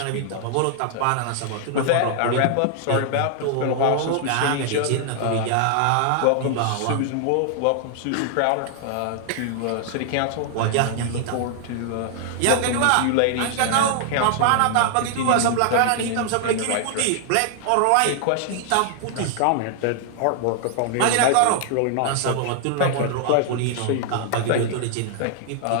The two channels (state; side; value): different; both; correlation -0.01